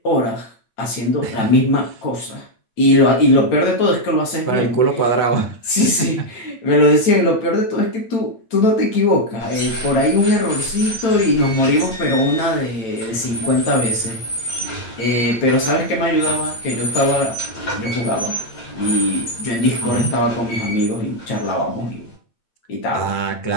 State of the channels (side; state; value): right; late; 8.8 ms